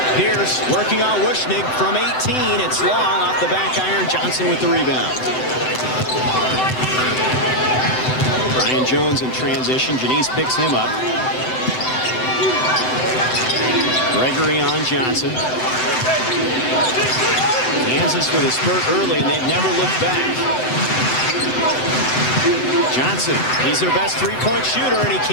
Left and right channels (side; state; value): right; late; 7.9 ms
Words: Pierce working on Wushnig from 18. It's long off the back iron. Johnson with the rebound. Brian Jones in transition. Janice picks him up. Gregory on Johnson. Kansas with a spurt early, and they've never looked back. Johnson, he's their best three-point shooter, and he